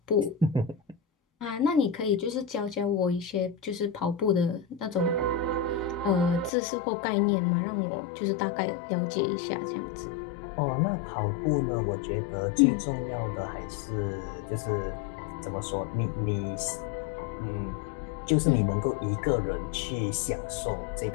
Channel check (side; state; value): right; drops out; at 6.5 s